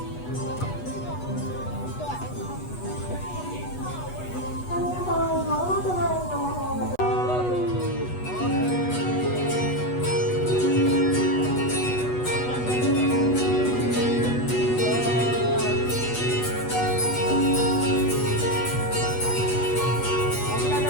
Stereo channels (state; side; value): late; right; 8.2 ms